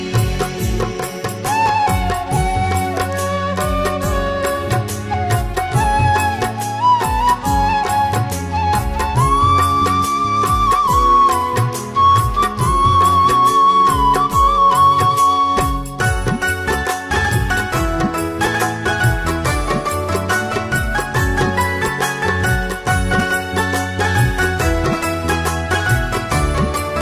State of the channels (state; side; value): identical; both; correlation 1.00